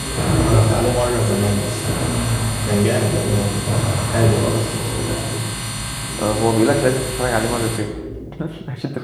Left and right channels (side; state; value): both; identical; correlation 1.00